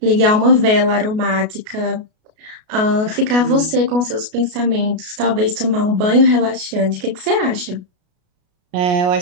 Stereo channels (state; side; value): late; left; 33 ms